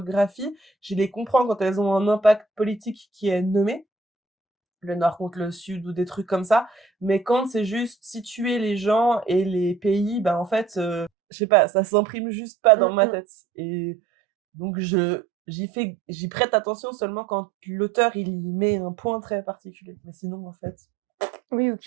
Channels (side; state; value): left; drops out; at 11.1 s